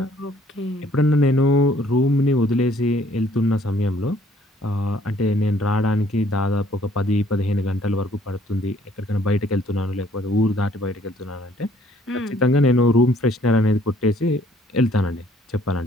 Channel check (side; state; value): both; normal; correlation 0.61